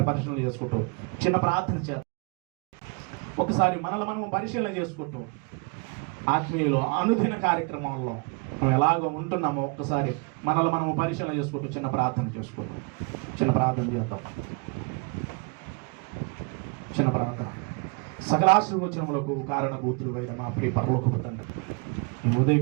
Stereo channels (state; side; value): quieter; left; 33.0 dB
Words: పరిశీలన చేసుకుంటూ చిన్న ప్రార్థన చేద్దాం. ఒకసారి మనల్ని మనం పరిశీలన చేసుకుంటూ ఆత్మీయులు అనుదిన కార్యక్రమాల్లో మనం ఎలాగో ఉంటున్నామో ఒక్కసారి మనల్ని మనము పరిశీలన చేసుకుంటూ చిన్న ప్రార్థన చేసుకుంటాం. చిన్న ప్రార్థన. సకలాశీర్వచనములకు కారణభూతులు అయిన మా ప్రియ పరలోకపు తండ్రి, ఈ